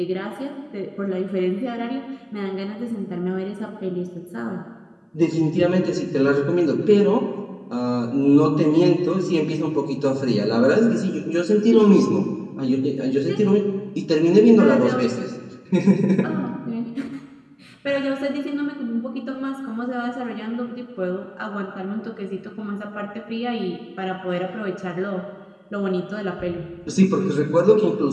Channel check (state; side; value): identical; both; correlation 1.00